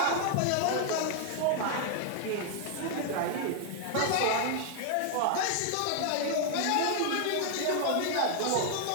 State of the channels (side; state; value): both; different; correlation 0.00